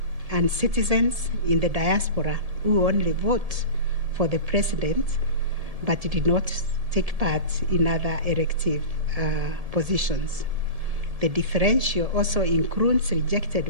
and citizens in the diaspora who only vote for the president but did not take part in other elective positions. The differential also includes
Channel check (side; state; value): left; late; 1.7 ms